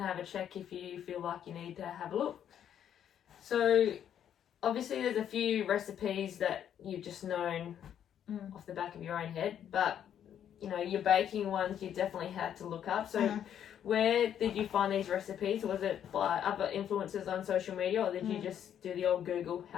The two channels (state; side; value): quieter; right; 9.6 dB